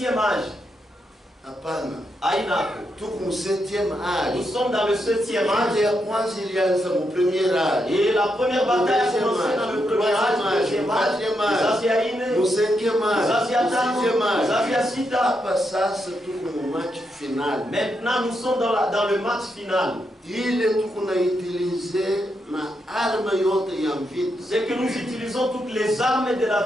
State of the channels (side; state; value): both; normal; correlation 0.82